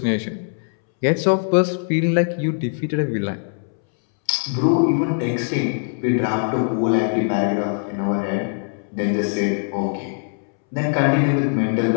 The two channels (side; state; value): right; silent; 65 dB below the other